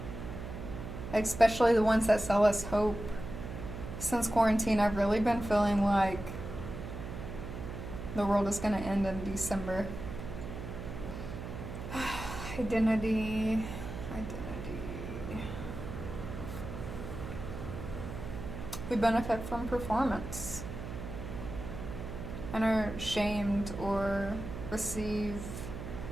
especially the ones that sell us hope. Since quarantine, I've really been feeling like the world is going to end in December. Identity. We benefit from performance and are shamed or receive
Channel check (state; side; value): noise; right; hum, 8 dB below the sound